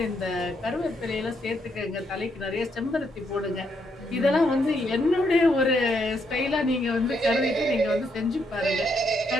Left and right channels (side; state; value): both; normal; correlation 0.76